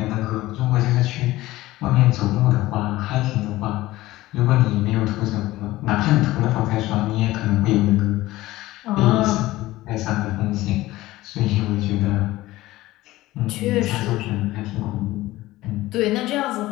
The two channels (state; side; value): quieter; right; 17.3 dB